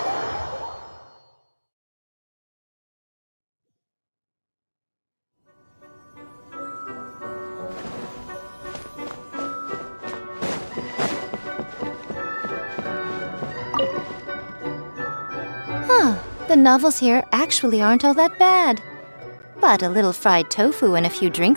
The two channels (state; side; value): inverted; both; correlation -1.00